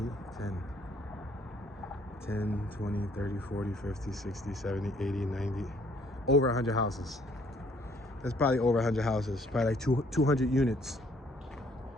10. 10, 20, 30, 40, 50, 60, 70, 80, 90. Over 100 houses. That's probably over 100 houses. Probably like 200 units.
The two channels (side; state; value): both; normal; correlation 0.63